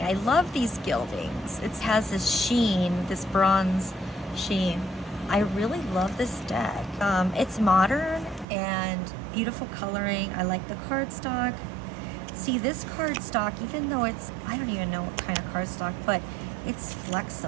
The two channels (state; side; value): drops out; left; at 8.5 s